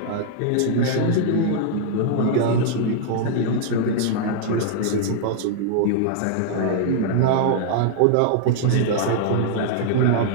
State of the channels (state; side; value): different; both; correlation -0.01